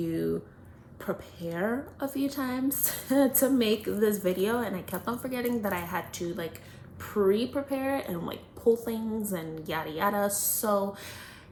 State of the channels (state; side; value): identical; both; correlation 1.00